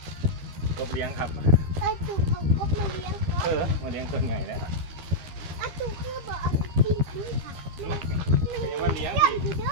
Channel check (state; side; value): late; left; 13 ms